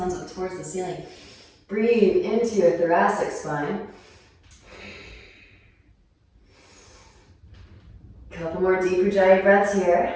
up towards the ceiling. Breathe into your thoracic spine. Couple more deep Ujjayi breaths here.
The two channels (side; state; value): both; identical; correlation 1.00